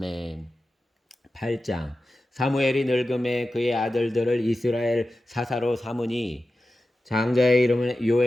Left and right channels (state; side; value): normal; both; correlation 0.93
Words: 8장. 사무엘이 늙음에 그의 아들들을 이스라엘 사사로 삼으니 장자의 이름은